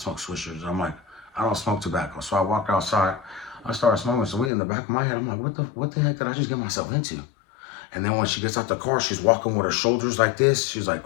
swishers. I'm like, I don't smoke tobacco. So I walked outside. I started smoking some weed in the back of my head. I'm like, what the heck did I just get myself into? And then when she gets out the car, she's walking with her shoulders like this. She's like,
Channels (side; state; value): right; drops out; at 4.5 s